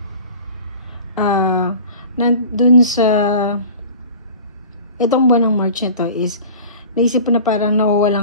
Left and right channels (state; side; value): inverted; both; correlation -0.41